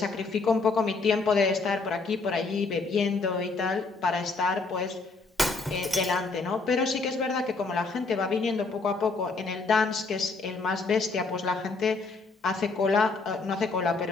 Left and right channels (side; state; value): right; quieter; 4.0 dB